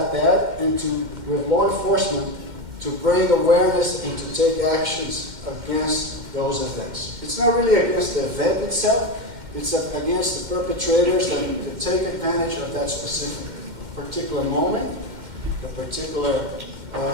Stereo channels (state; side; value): late; left; 2.1 ms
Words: that and to, with law enforcement, to bring awareness and to take actions against those events. It's not really against the event itself, it's against the perpetrators that take advantage of that specific particular moment, the particular